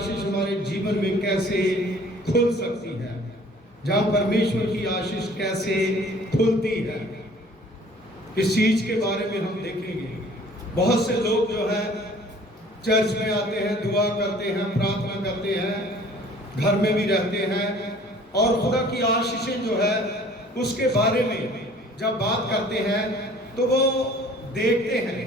हमारे जीवन में कैसे खुल सकती है, जहाँ परमेश्वर की आशीष कैसे खुलती है, इस चीज के बारे में हम देखेंगे। बहुत से लोग जो है चर्च में आते हैं, दुआ करते हैं, प्रार्थना करते हैं, घर में भी रहते हैं और खुदा की आशीषें जो है उसके बारे में जब बात करते हैं तो वो देखते हैं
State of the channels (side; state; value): both; normal; correlation 0.52